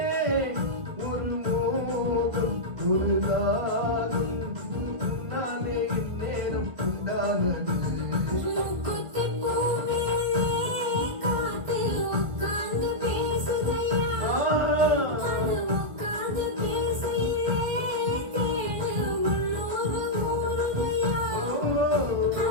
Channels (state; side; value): late; left; 1.3 ms